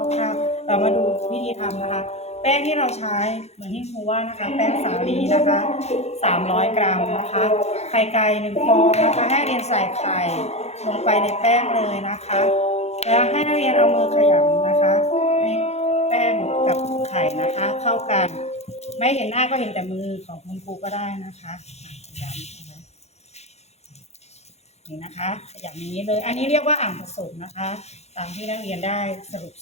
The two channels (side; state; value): right; late; 0.31 ms